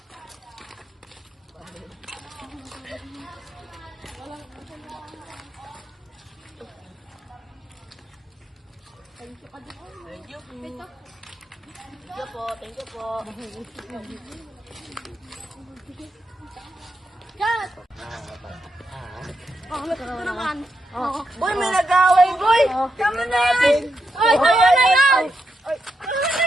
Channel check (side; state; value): both; normal; correlation 0.84